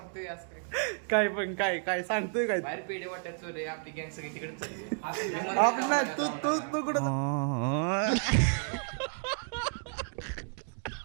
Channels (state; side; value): silent; left; 57 dB below the other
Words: असं काय काय पण काय काय सांगतोय काय बाहेर पेढे वाटत चोरे आपली गँग सगळी तिकडे चालली आपलं तू तू तू कुठं